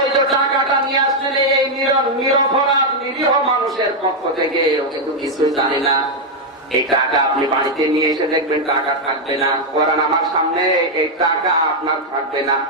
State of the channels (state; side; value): normal; both; correlation 0.00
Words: টাকাটা নিয়ে আসলে এই নিরপরাধ নিরীহ মানুষের পক্ষ থেকে, ও কিন্তু কিছুই জানে না। এই টাকা আপনি বাড়িতে নিয়ে এসে দেখবেন টাকা থাকবে না। কোরআন আমার সামনে, এই টাকা আপনার থাকবে না।